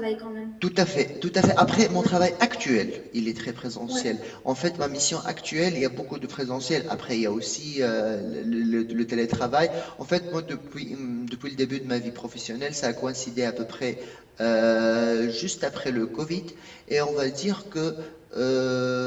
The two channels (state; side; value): identical; both; correlation 1.00